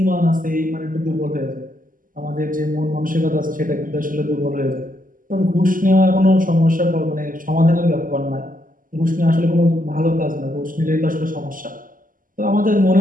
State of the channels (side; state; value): left; late; 0.40 ms